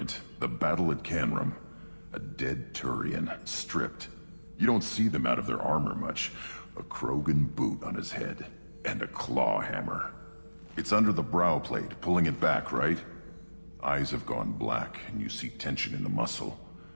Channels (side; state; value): both; inverted; correlation -1.00